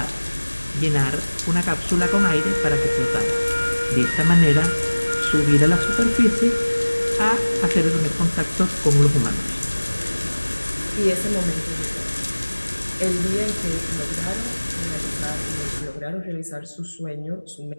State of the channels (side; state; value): both; inverted; correlation -1.00